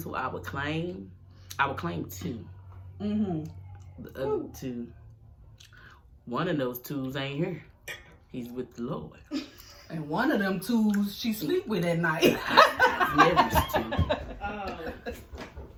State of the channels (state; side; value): identical; both; correlation 1.00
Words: who I would claim 2. Mm-hmm. The other 2, one of those 2s ain't here. He's with the Lord. And one of them twos she sleep with at night. Mary's 2. Oh.